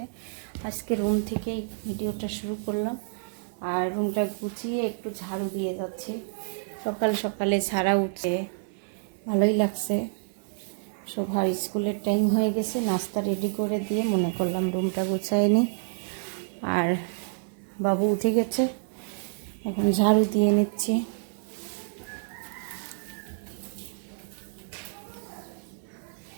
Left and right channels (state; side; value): silent; left; 58 dB below the other